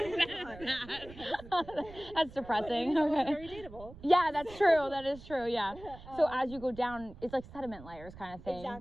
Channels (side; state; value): right; noise; rumble, 17 dB below the sound